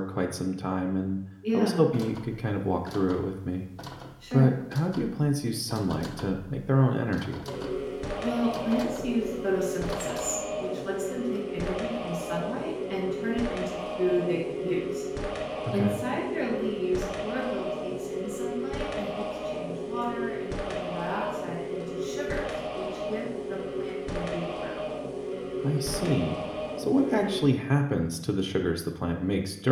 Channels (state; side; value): identical; both; correlation 1.00